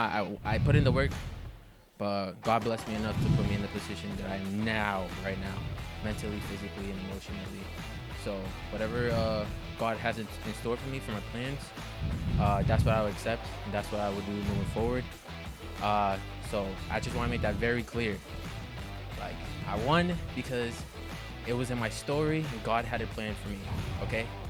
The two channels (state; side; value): identical; both; correlation 1.00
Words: I put in the work, but God blessed me enough to put me in the position that I am now, right now, mentally, physically, and emotionally. So whatever God has in store for me, for my plans, that's what I would accept, and that's what I would do moving forward. So I just want to make that very clear. Like, I won because it was in my story, and God had a plan for me, okay?